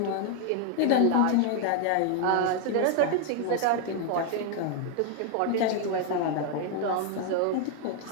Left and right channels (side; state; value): both; different; correlation 0.00